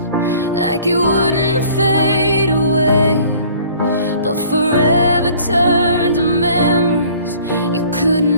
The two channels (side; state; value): both; inverted; correlation -0.52